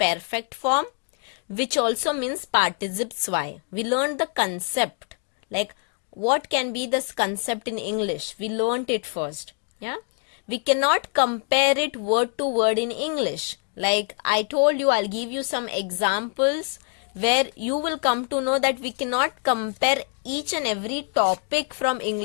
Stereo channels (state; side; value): quieter; right; 39.8 dB